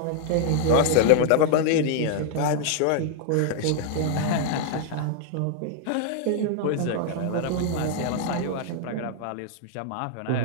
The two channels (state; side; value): different; both; correlation 0.00